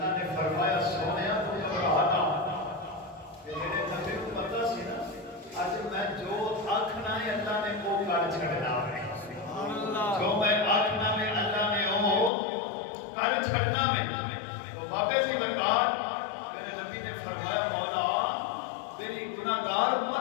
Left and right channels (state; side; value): drops out; right; at 12.3 s